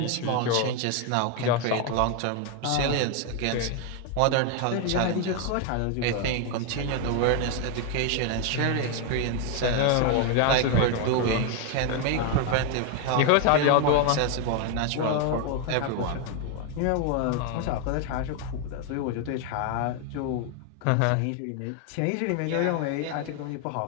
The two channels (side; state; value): both; different; correlation 0.01